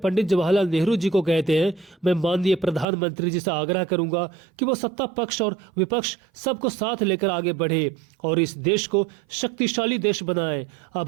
पंडित जवाहरलाल नेहरू जी को कहते हैं, मैं माननीय प्रधानमंत्री जी से आग्रह करूंगा कि वो सत्ता पक्ष और विपक्ष सबको साथ लेकर आगे बढ़े और इस देश को शक्तिशाली देश बनाए।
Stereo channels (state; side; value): drops out; left; at 2.9 s